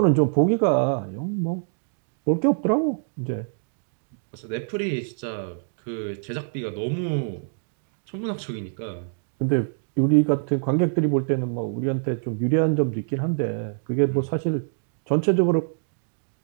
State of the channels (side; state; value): left; silent; digital silence